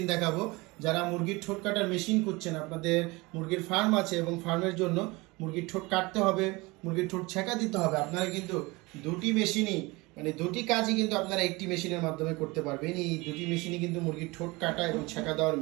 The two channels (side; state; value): left; quieter; 23.7 dB